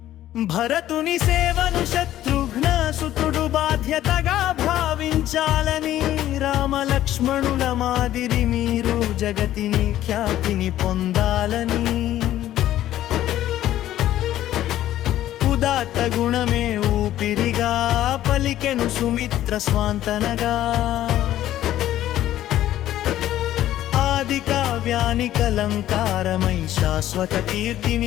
భరతుని సేవను శత్రుఘ్న సుతుడు బాధ్యతగా భావించాలని రామలక్ష్మణుల మాదిరి మీరు జగతిని ఖ్యాతిని పొందాలని ఉదాత్త గుణమే ఊపిరిగా పలికెను సుమిత్ర స్వాంతనగా ఆది కావ్యానికి అలంకారమై శాశ్వత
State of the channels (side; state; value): right; quieter; 13.1 dB